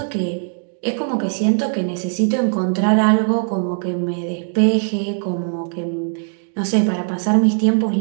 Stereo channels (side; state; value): left; silent; digital silence